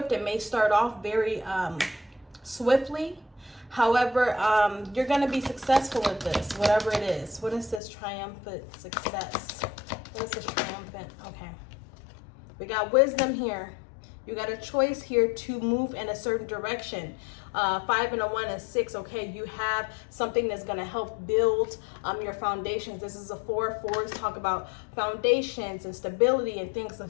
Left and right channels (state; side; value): drops out; right; at 7.8 s